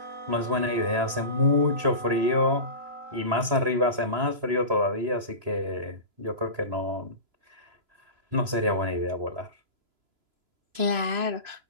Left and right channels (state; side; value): late; left; 3.0 ms